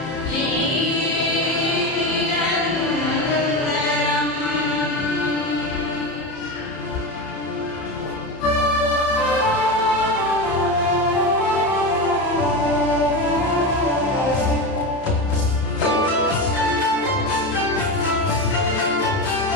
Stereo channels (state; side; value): late; right; 31 ms